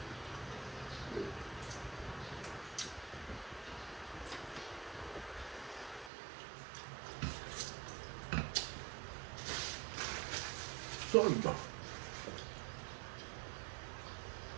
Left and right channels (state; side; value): drops out; left; at 6.1 s